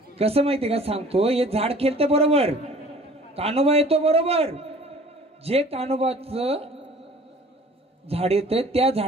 कसं माहितीये का सांगतो, हे झाड खेळतं बरोबर, कानोबा येतो बरोबर. जे कानोबाचं झाड येतंय त्या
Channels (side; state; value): both; normal; correlation 0.49